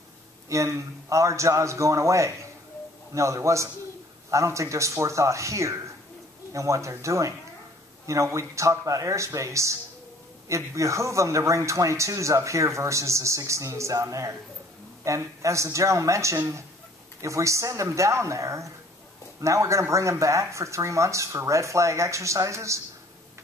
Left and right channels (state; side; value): normal; both; correlation 0.56